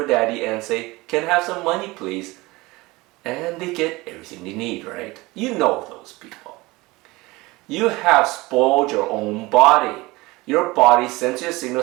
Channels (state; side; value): quieter; left; 21.8 dB